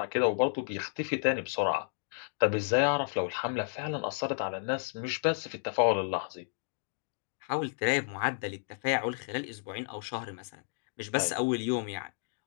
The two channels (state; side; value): silent; right; digital silence